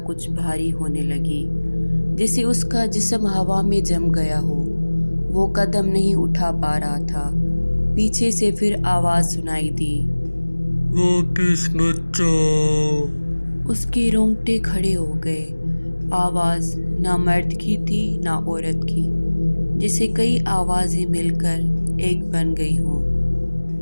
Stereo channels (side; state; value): both; inverted; correlation -1.00